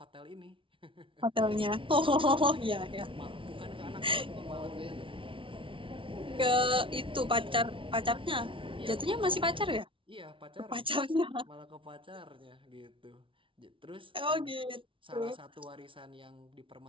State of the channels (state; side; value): late; left; 0.25 ms